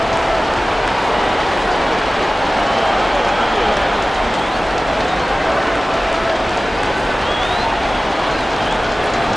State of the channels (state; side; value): normal; both; correlation 0.97